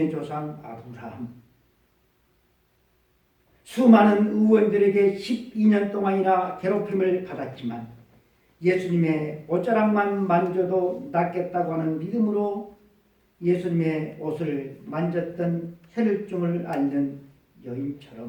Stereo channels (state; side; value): identical; both; correlation 1.00